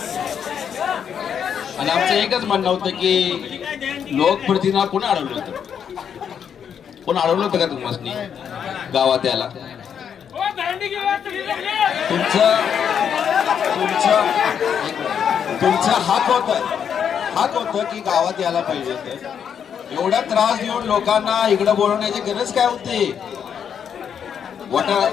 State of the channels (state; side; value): quieter; right; 8.0 dB